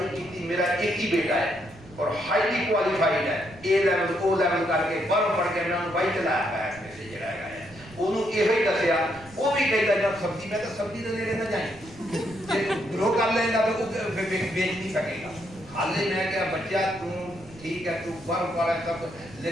ਕੀਤੀ ਮੇਰਾ ਇੱਕ ਹੀ ਬੇਟਾ ਹੈ और हाईली क्वालिफाइड है ए लेवल ओ लेवल करके बाहर पढ़ के मैं बाई चलाया है ऐसे जड़ा है ओनू ਇਹੋ ਹੀ ਦੱਸਿਆ ਉਹ ਵੀ ਕਹਿੰਦਾ ਜਦ ਸਬਜ਼ੀ ਮੈਂ ਤਾਂ ਸਬਜ਼ੀ ਦੇ ਨੇੜੇ ਨਾ ਜਾਈਂ ਜੇ ਗਰੋ ਕਰ ਲੈਂਦਾ ਤਾਂ ਉਹ ਵੇਚ ਨਹੀਂ ਸਕੇਗਾ ਹਾਲੇ ਮੈਂ ਕਿਹਾ ਬੱਚਾ ਤੂੰ ਠੀਕ ਹੈ ਤੂੰ ਬਾਹਰ ਵਾਲਾ ਸਭ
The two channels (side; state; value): right; noise; rumble, 21 dB below the sound